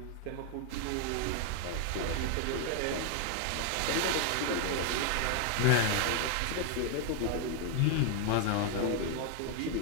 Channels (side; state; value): both; different; correlation 0.00